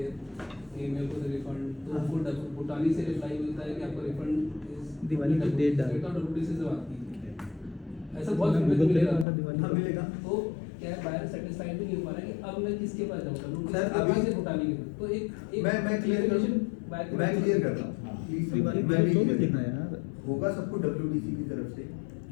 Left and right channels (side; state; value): right; drops out; at 9.2 s